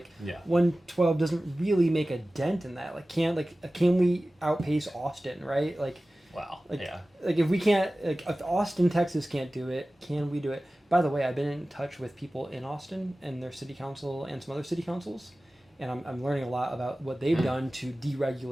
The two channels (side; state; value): both; normal; correlation 0.96